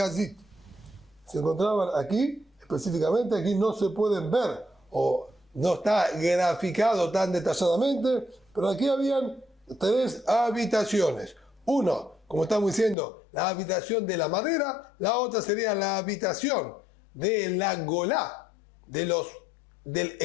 Se encontraban aquí, específicamente, aquí no se pueden ver, o no está graficado tan detalladamente, pero aquí habían tres habitaciones. Uno, como estamos diciendo, la habitación de la madera, la otra sería la habitación de la Golá, del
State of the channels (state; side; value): drops out; right; at 13.0 s